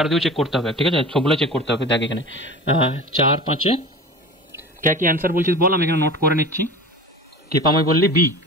দিয়েও চেক করতে হবে, ঠিক আছে, সবগুলো চেক করতে হবে। দেখ এখানে 4 5 কে কি অ্যান্সার বলছিস বল, আমি এখানে নোট করে নিচ্ছি। কৃপাময় বললি বি,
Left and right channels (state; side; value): normal; both; correlation 0.35